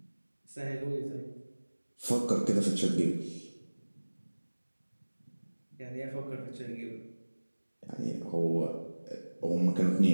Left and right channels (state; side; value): inverted; both; correlation -1.00